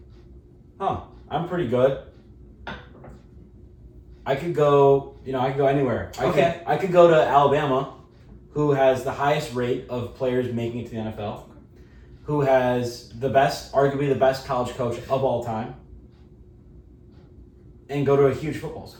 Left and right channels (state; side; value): identical; both; correlation 1.00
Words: I'm pretty good. I could go anywhere. I could go to Alabama, who has the highest rate of players making it to the NFL, who has arguably the best college coach of all time, and go to a huge football